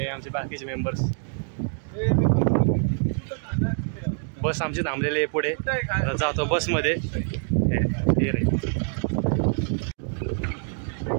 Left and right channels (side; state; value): left; silent; 58 dB below the other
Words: आमचे बाकीचे मेंबर्स. बस आमची थांबलेली आहे पुढे, जातो बसमध्ये. हे रे